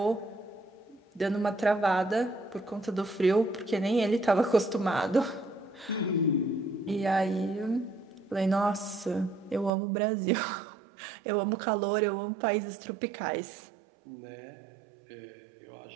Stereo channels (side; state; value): left; drops out; at 9.7 s